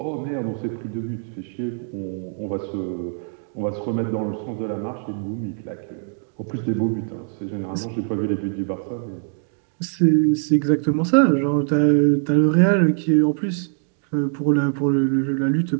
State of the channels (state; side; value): silent; left; 64 dB below the other